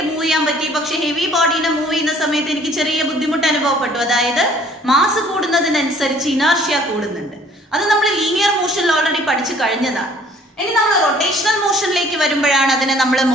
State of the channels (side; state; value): both; normal; correlation 0.57